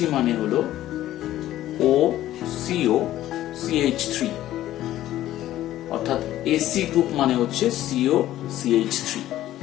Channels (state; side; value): quieter; right; 13.7 dB